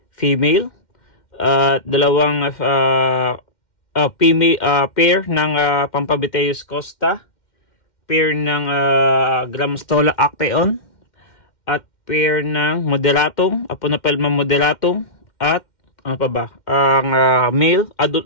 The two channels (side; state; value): right; late; 2.1 ms